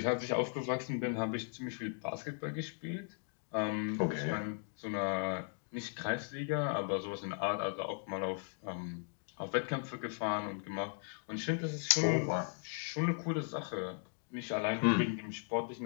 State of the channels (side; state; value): right; silent; 53 dB below the other